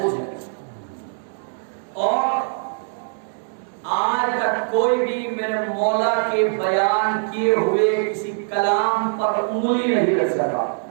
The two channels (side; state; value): left; silent; 64 dB below the other